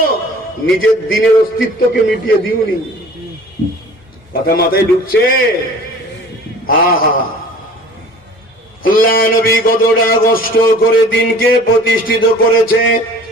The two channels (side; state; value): both; normal; correlation 0.46